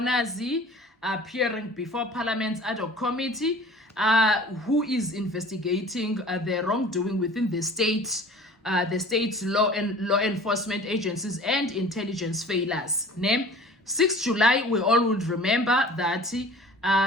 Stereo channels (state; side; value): normal; both; correlation 0.45